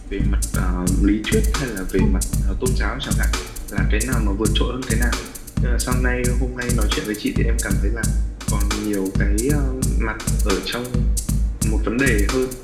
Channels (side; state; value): both; identical; correlation 1.00